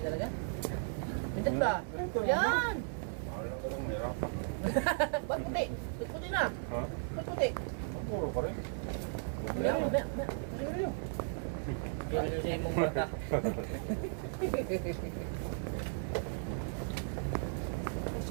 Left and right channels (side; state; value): left; silent; digital silence